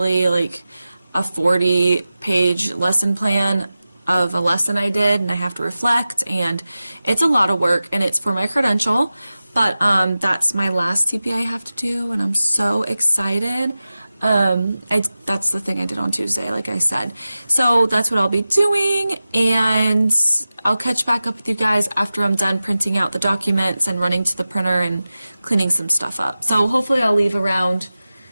like a 40-page lesson plan of a lesson I did, and I have to reflect, and it's a lot of work, and it's for my credential. But that's my last TPA I have to do, and I'm so excited. That's the thing I did on Tuesday, like I said. So that's what I'll be doing, and I'll catch back up with you guys after I'm done printing out the documents and running to the printer and cleaning some stuff up. So hopefully I'll leave around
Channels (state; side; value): inverted; both; correlation -0.95